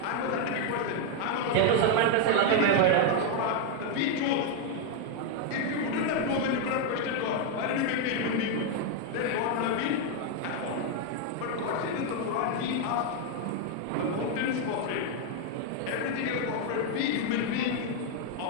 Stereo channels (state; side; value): different; both; correlation 0.01